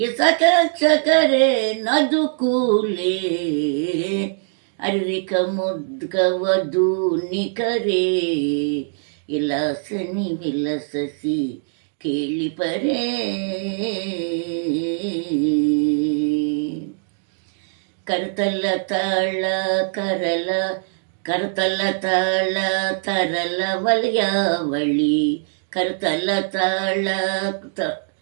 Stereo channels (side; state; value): left; silent; digital silence